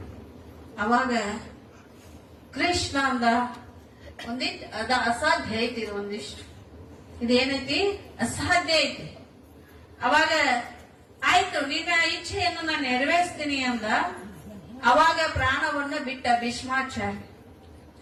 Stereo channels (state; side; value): identical; both; correlation 1.00